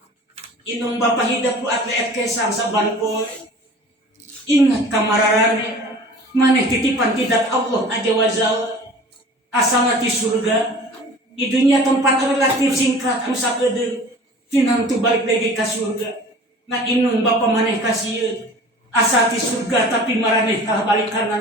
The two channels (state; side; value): normal; both; correlation 0.43